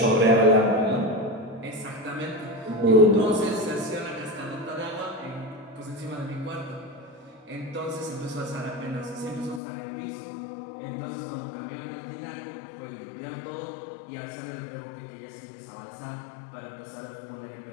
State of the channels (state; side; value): drops out; right; at 9.6 s